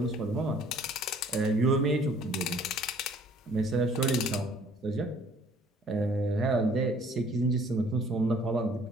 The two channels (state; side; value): normal; both; correlation 0.56